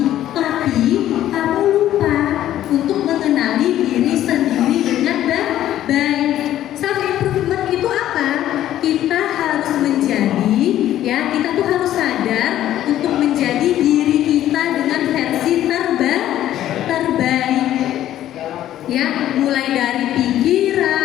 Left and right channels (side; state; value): right; quieter; 12.5 dB